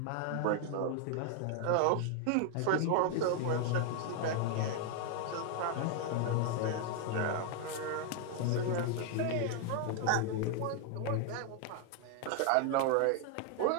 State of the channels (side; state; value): both; different; correlation 0.00